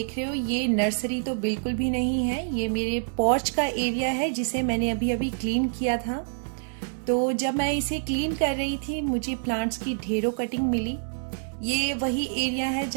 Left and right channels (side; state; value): left; silent; digital silence